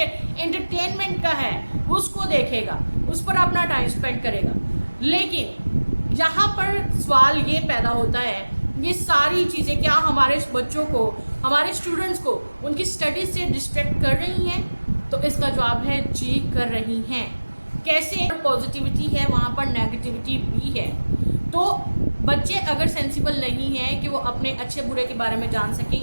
एंटरटेनमेंट का है उसको देखेगा, उस पर अपना टाइम स्पेंड करेगा। लेकिन यहाँ पर सवाल ये पैदा होता है, ये सारी चीज़ें क्या हमारे बच्चों को, हमारे स्टूडेंट्स को उनकी स्टडीज से डिस्ट्रैक्ट कर रही हैं? तो इसका जवाब है जी, कर रही हैं। कैसे? पॉजिटिविटी है वहाँ पर नेगेटिविटी भी है। तो बच्चे अगर सेंसिबल नहीं हैं कि वो अपने अच्छे बुरे के बारे में जान सकें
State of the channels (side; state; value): both; inverted; correlation -1.00